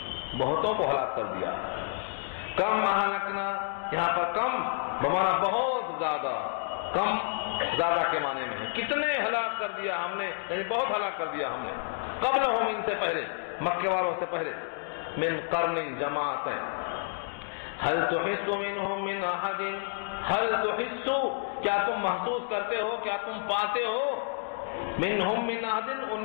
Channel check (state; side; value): silent; right; digital silence